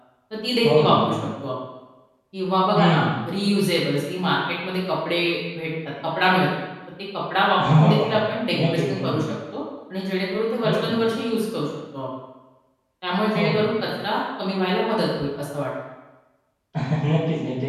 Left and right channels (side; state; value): both; identical; correlation 1.00